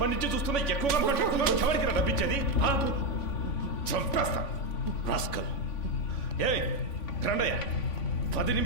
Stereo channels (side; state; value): right; late; 3.5 ms